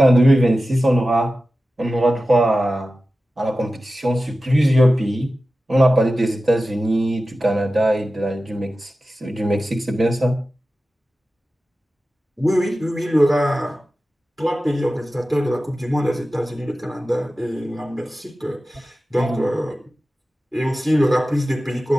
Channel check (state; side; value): normal; both; correlation 0.94